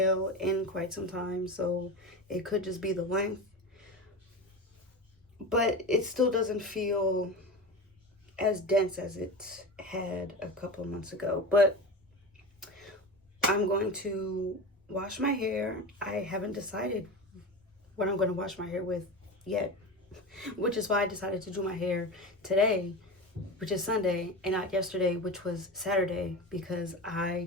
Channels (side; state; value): both; normal; correlation 0.26